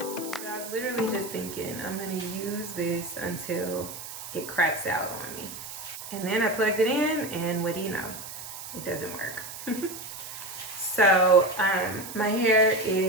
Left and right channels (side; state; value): right; noise; hiss, 11 dB below the sound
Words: I was literally just thinking, I'm gonna use this until it craps out on me. And then I plugged it in, and what do you know? It doesn't work. So my hair